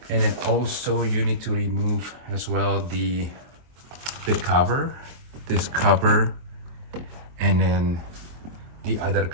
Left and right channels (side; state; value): left; late; 23 ms